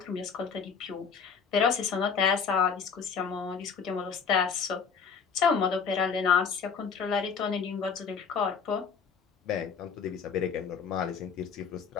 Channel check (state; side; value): quieter; right; 6.2 dB